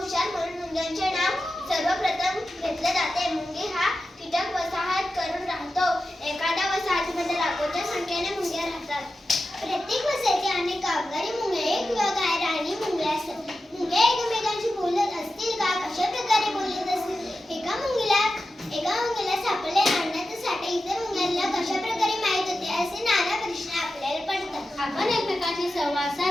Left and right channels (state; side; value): normal; both; correlation 0.92